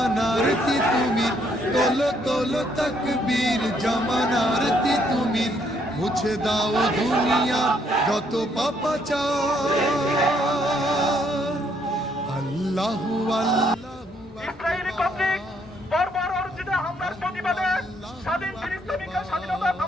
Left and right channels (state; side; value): normal; both; correlation 0.70